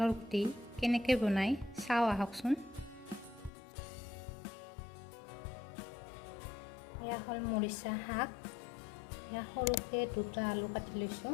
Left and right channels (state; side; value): drops out; right; at 3.5 s